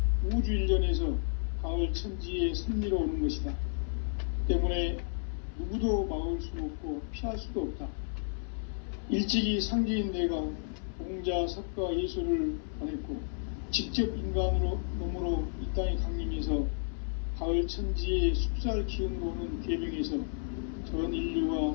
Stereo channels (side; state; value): right; silent; 56 dB below the other